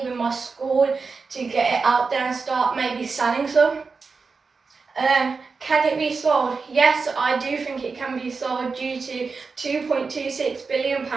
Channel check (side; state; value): left; quieter; 4.6 dB